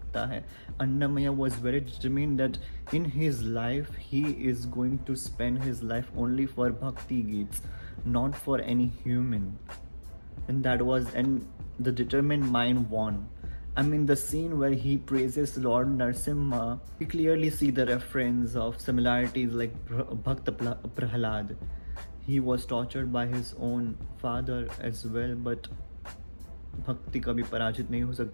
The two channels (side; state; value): both; inverted; correlation -1.00